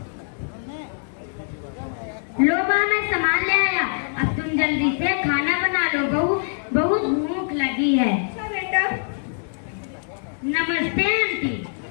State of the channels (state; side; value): silent; right; digital silence